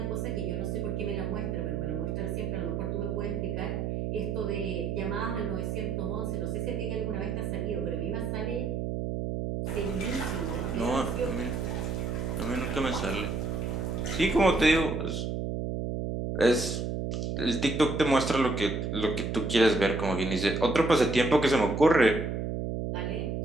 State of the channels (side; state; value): right; noise; hum, 2 dB below the sound